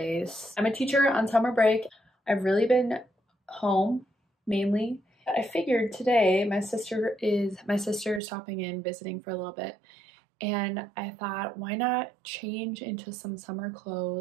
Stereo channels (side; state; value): left; drops out; at 8.2 s